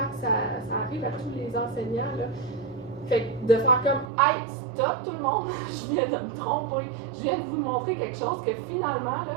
ça arrive à tous les enseignants. Là. Fait que de faire comme « Hey, stop tout le monde, je viens de me tromper, je viens de vous montrer quelque chose que finalement,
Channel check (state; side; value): drops out; left; at 4.1 s